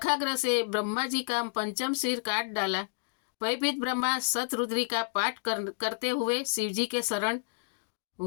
से ब्रह्मा जी का पंचम सिर काट डाला। भयभीत ब्रह्मा शतरुद्री का पाठ करते हुए शिवजी के शरण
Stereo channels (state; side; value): silent; right; digital silence